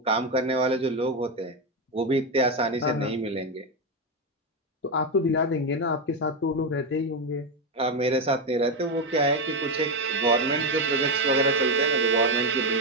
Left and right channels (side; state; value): both; normal; correlation 0.10